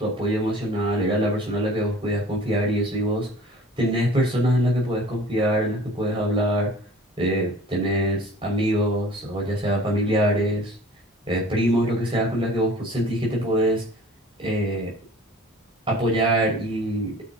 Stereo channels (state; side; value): normal; both; correlation 0.46